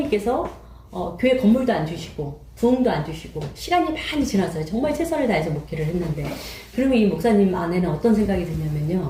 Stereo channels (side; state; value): both; identical; correlation 1.00